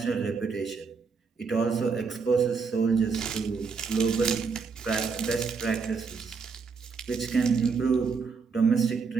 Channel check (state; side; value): quieter; left; 5.1 dB